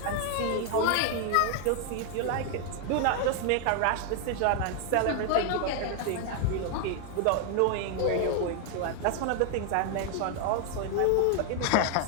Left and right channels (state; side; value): different; both; correlation 0.00